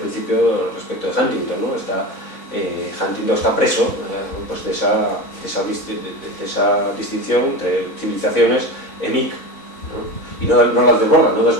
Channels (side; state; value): right; late; 4.0 ms